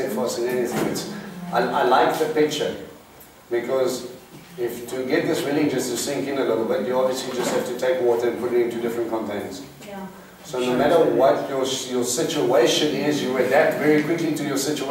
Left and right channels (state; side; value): identical; both; correlation 1.00